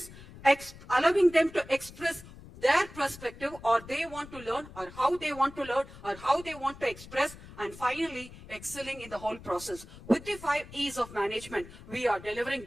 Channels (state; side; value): noise; left; rumble, 17 dB below the sound